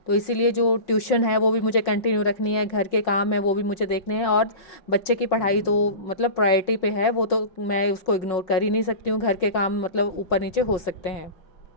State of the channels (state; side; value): late; right; 5.4 ms